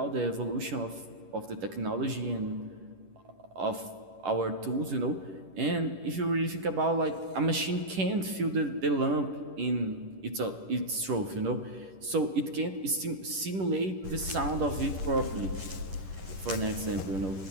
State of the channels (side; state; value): left; late; 11 ms